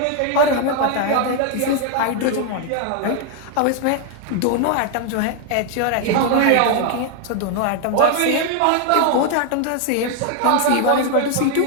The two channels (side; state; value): both; different; correlation 0.00